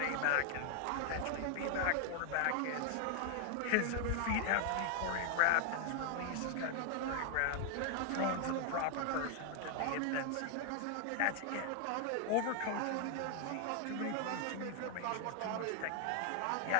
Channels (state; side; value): different; both; correlation 0.00